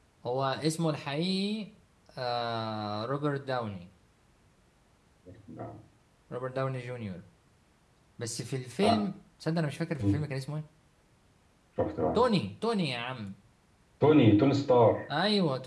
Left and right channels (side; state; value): both; identical; correlation 1.00